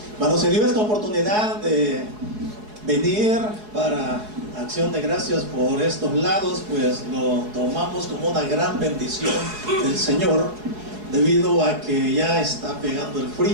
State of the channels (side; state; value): left; late; 4.7 ms